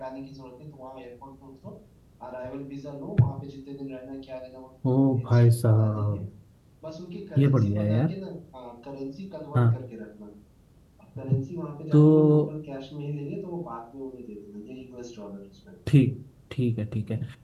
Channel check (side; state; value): both; identical; correlation 1.00